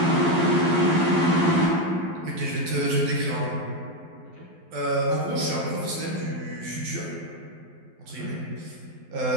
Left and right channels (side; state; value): left; late; 12 ms